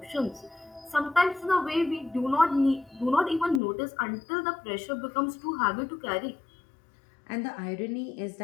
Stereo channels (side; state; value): right; drops out; at 3.6 s